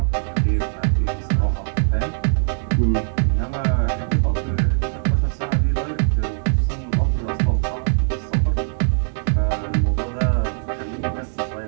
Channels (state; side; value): silent; left; digital silence